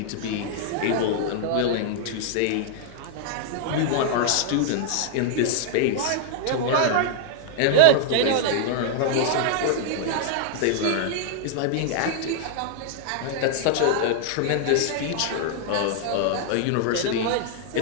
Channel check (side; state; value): both; different; correlation 0.00